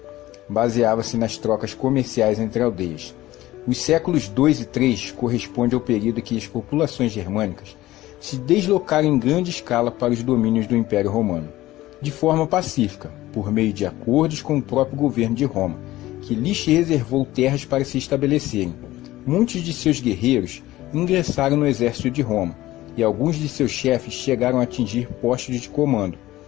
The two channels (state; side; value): quieter; right; 16.4 dB